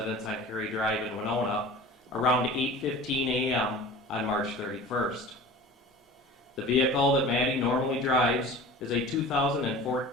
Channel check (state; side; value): normal; both; correlation 0.40